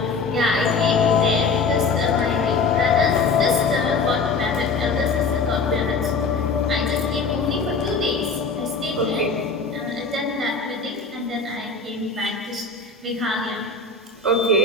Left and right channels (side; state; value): right; quieter; 4.3 dB